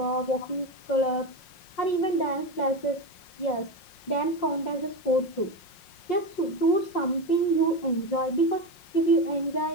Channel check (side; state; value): right; late; 5.6 ms